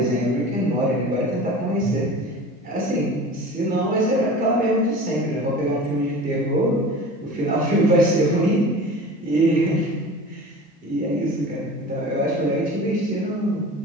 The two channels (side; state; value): both; normal; correlation 0.37